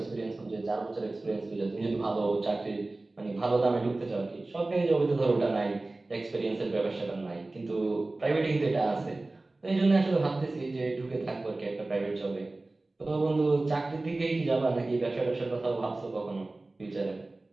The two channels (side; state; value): left; quieter; 3.0 dB